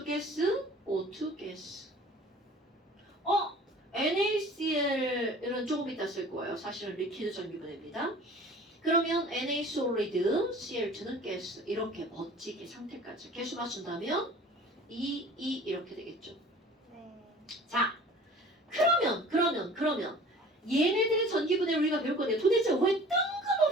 가스, O2 가스. NaCl은 조금 이따 쓸 거예요. 사실은 리퀴드 전기분해입니다. 그러면 Na 솔리드, Cl2는 가스. 이렇게 멋지게 상태까지 개수 맞춘다면 2, 2 이렇게 되겠죠. 네. 자, 그러면 얘네들의 전기분해를 우리가 배울 건데 도대체 왜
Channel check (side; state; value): both; normal; correlation 0.45